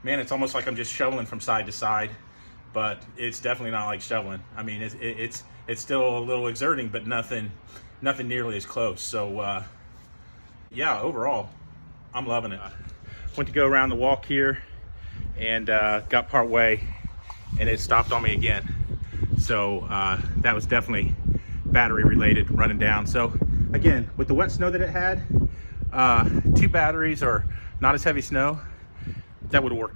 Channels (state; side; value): inverted; both; correlation -1.00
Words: man, it's almost like I'm just shoveling from side to side, but it's definitely not like shoveling. I mean, it's still a little exerting, but nothing nearly as close. So yeah, overall, I'm loving it. Went to go around the walk here and got part way, and it stopped on me again. So that was definitely battery related, running down. So again, with the wet snow that it had, 2 batteries or not as heavy snow, that would have